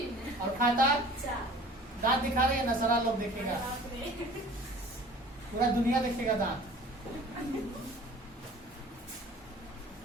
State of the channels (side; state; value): both; normal; correlation 0.46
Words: और खाता? 4। दांत दिखा रहे हैं ना, सारा लोग देखेगा, पूरा दुनिया देखेगा दांत।